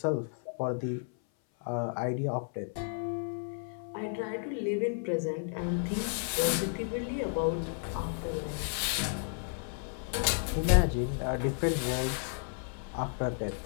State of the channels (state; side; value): silent; right; 56 dB below the other